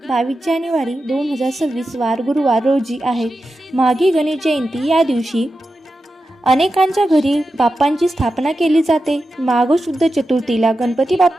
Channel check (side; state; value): both; normal; correlation 0.91